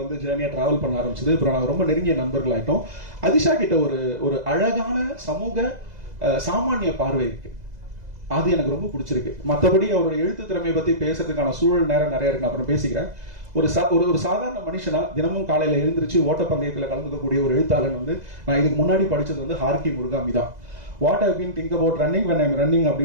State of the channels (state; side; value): late; left; 2.0 ms